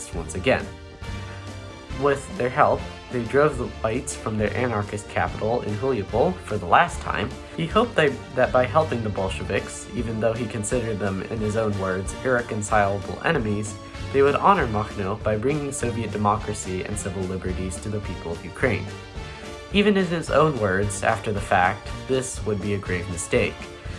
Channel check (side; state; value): both; identical; correlation 1.00